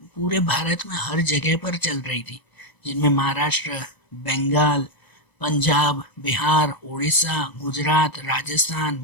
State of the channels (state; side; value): late; right; 1.0 ms